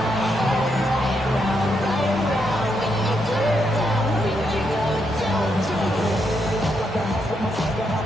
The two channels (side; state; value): both; normal; correlation 0.79